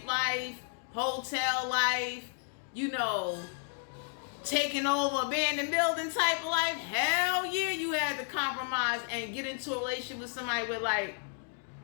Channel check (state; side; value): silent; right; 56 dB below the other